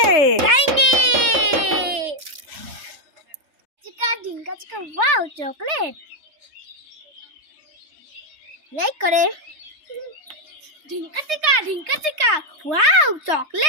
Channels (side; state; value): left; late; 3.3 ms